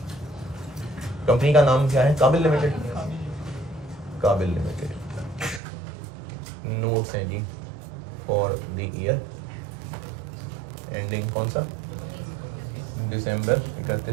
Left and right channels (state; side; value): drops out; left; at 5.6 s